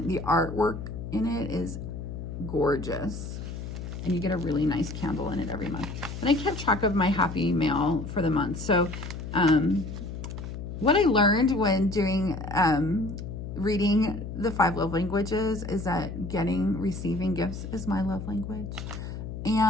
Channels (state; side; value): noise; left; hum, 8 dB below the sound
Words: The artwork in it is gorgeous. And you get a really nice candle in it every month. And I kept track of my happy mail for the month. So what I learned when doing reading the 5 love languages is that receiving gifts is my love language.